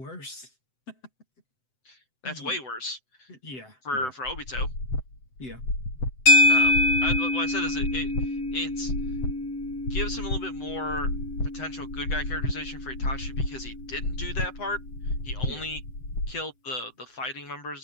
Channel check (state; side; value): late; right; 7.8 ms